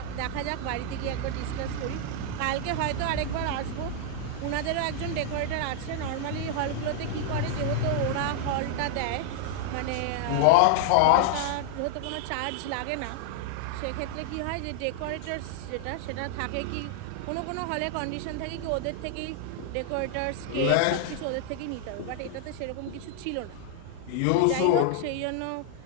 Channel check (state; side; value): different; both; correlation 0.00